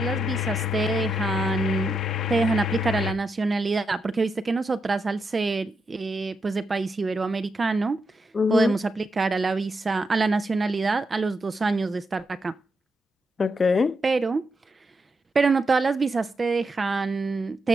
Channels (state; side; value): normal; both; correlation 0.83